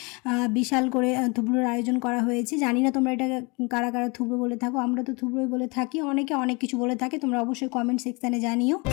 বিশাল করে থুবড়োর আয়োজন করা হয়েছে। জানি না তোমরা এটা কারা কারা থুবড়ো বলে থাকো, আমরা তো থুবড়োই বলে থাকি। অনেকে অনেক কিছু বলে থাকে, তোমরা অবশ্যই কমেন্ট সেকশানে জানিও।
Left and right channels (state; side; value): quieter; right; 28.7 dB